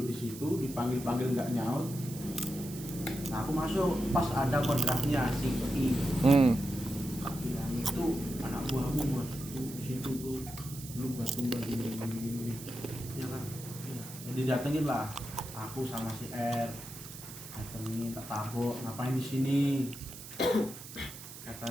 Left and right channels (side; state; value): right; noise; hiss, 13 dB below the sound